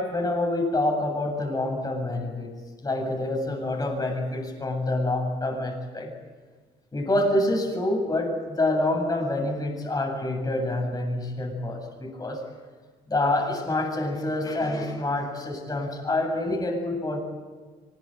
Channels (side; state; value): both; normal; correlation 0.66